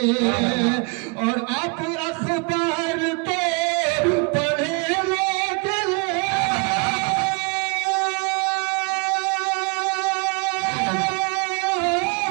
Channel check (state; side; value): quieter; left; 32.2 dB